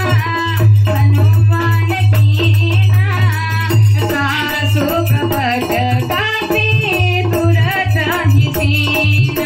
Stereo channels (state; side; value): identical; both; correlation 1.00